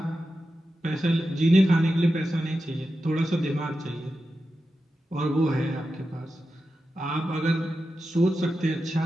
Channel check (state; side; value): normal; both; correlation 0.91